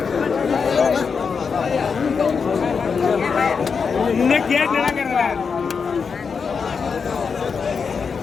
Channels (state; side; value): quieter; right; 5.7 dB